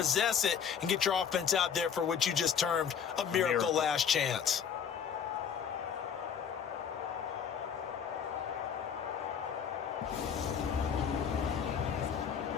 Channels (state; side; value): quieter; right; 7.6 dB